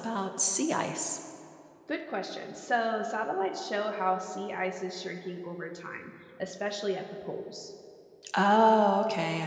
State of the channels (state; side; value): identical; both; correlation 1.00